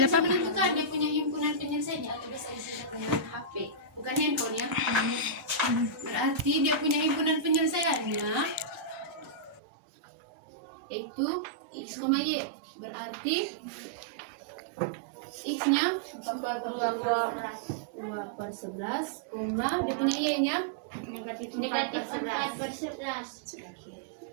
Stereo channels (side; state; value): left; drops out; at 9.6 s